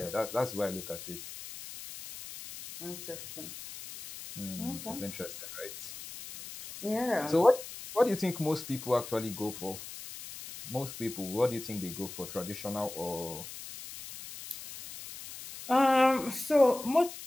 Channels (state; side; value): noise; left; hiss, 12 dB below the sound